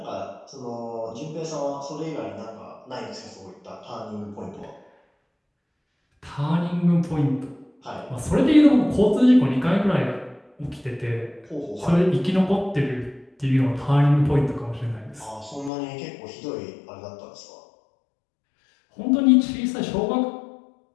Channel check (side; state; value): right; drops out; at 15.7 s